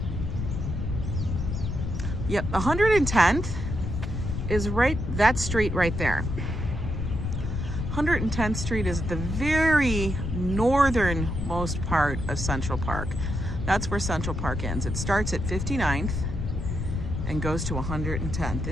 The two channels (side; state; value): left; noise; rumble, 3 dB below the sound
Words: Yep, 110th is that street right there. 110th Street is the very northernmost part of Central Park. That's where Central Park ends. It starts at 59th and goes to 110th.